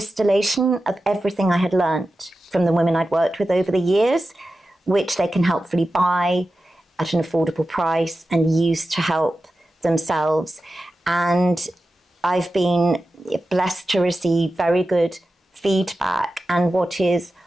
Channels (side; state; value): both; normal; correlation 0.93